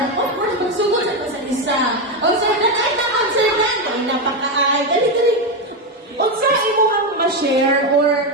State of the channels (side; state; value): both; normal; correlation 0.09